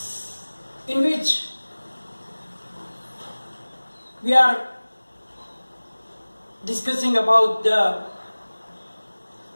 in which we are discussing about the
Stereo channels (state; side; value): inverted; both; correlation -1.00